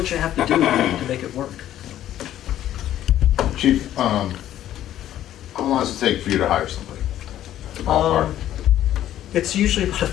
you have to do to make it work. Chief, how long does it take for you to hire somebody? Ballpark. It's usually about a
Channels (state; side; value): quieter; right; 12.2 dB